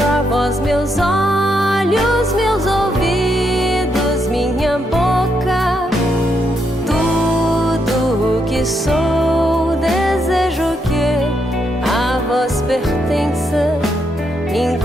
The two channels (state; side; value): normal; both; correlation 0.79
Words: a vós meus olhos, meus ouvidos, minha boca, tudo o que sou. Desejo que a vós pertença,